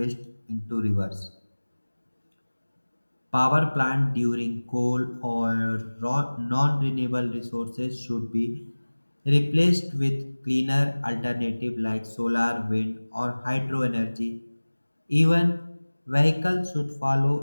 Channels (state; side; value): inverted; both; correlation -1.00